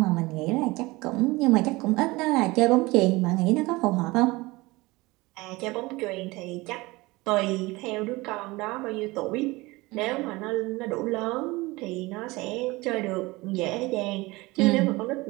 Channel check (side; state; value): left; quieter; 22.0 dB